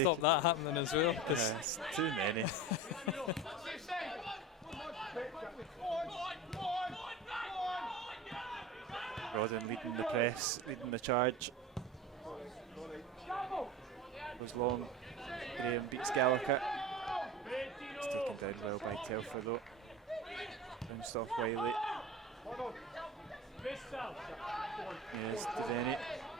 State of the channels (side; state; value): both; normal; correlation 0.32